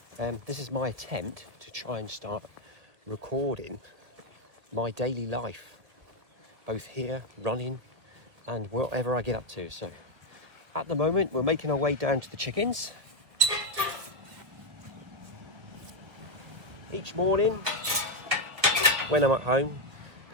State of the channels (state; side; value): late; left; 1.6 ms